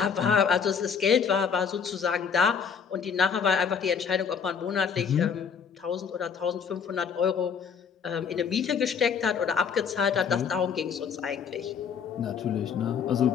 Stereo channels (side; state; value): right; quieter; 6.7 dB